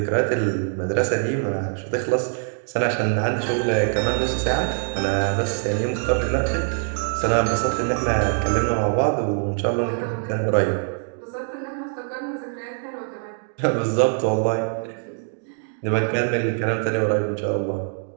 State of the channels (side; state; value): left; silent; 60 dB below the other